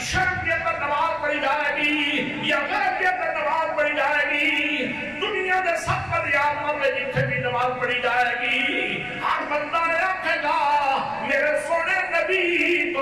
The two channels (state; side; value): noise; left; rumble, 25 dB below the sound